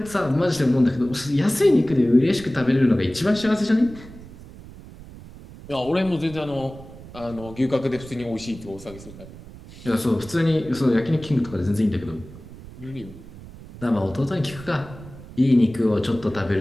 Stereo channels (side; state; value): right; noise; rumble, 17 dB below the sound